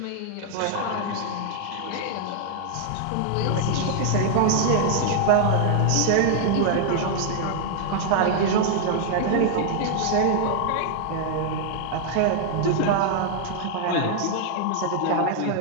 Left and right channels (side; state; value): both; different; correlation -0.01